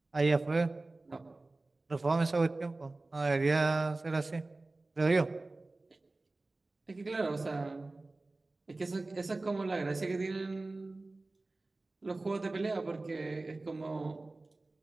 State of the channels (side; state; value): left; quieter; 3.1 dB